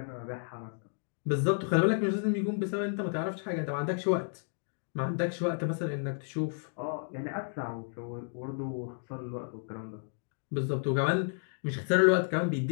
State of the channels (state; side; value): silent; right; digital silence